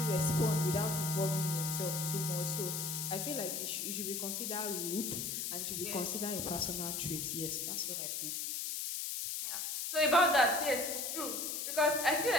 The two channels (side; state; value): left; noise; hiss, 2 dB below the sound